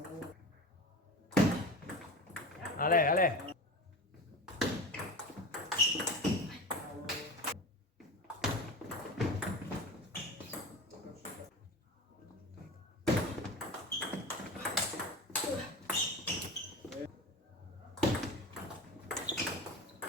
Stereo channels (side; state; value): both; normal; correlation 0.30